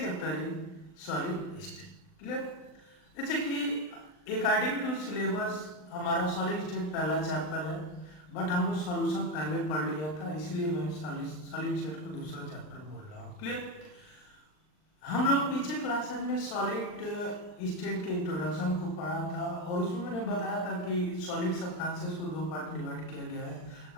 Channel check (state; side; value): late; right; 39 ms